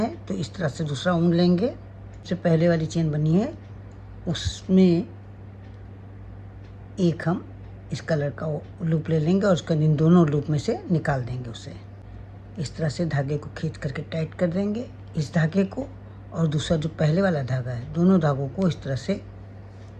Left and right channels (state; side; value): identical; both; correlation 1.00